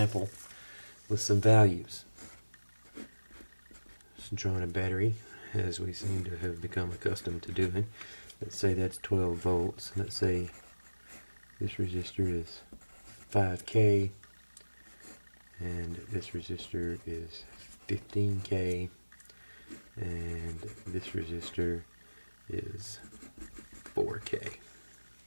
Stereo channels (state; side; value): inverted; both; correlation -1.00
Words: with some values. Just drawing a battery, as we seem to have become accustomed to doing. Let's say that's 12 volts. Let's say this resistor is 5K, and this resistor is 15K, and this resistor is 4K.